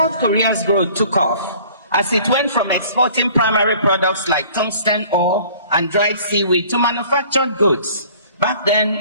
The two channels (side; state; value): both; inverted; correlation -0.52